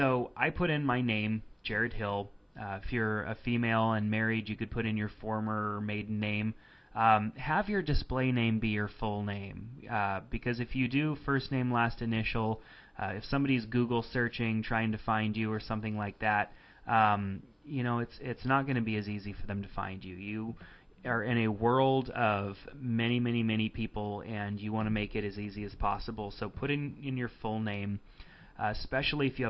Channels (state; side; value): identical; both; correlation 1.00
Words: I put in my name, Jared Hill. If you're a female and married, you could put in your former or maiden name. Have your display name be your full name, because if you do first name, last initial, if somebody's Google searching, trying to find you or something like that, you know, it's not going to be as easy for them to find you. You are in a world of many, many, many people, and you want to make it as easy as possible. So put in your full name, especially if you